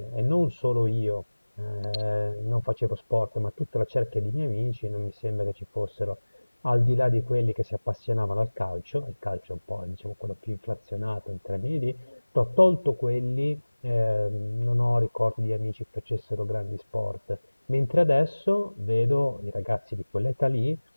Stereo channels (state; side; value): inverted; both; correlation -1.00